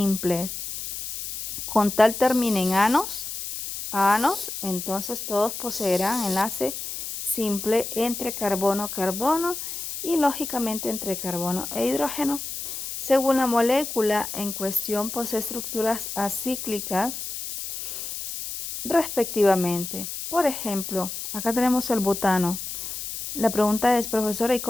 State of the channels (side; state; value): left; noise; hiss, 7 dB below the sound